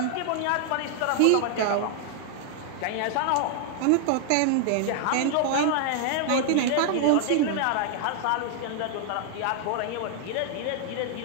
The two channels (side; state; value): both; different; correlation 0.00